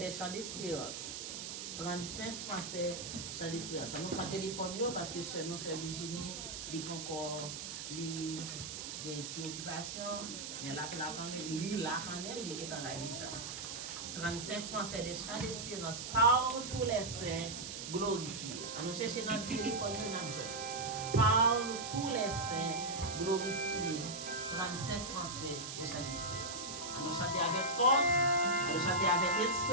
chants d'espérance. 35 Français chants d'espérance. Nous prenons le téléphone parce que seul Virginie dit encore il y a une petite occupation, mais là, quand même, il est dans la déjà. 35 Français des chants d'espérance par tous les saints glorifiés. Nous cherchons dans le téléphone, nous avons joué. Par tous les saints glorifiés, 35 Français des chants d'espérance. Nous chanter avec force, nous chanter avec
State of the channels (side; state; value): right; noise; hiss, 7 dB below the sound